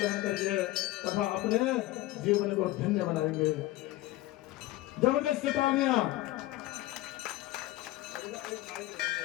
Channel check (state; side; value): quieter; right; 17.2 dB